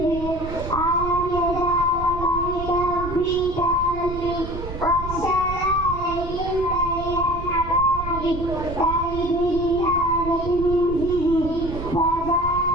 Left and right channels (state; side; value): noise; right; rumble, 8 dB below the sound